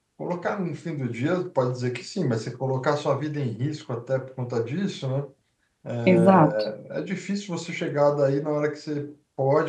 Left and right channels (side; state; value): both; identical; correlation 1.00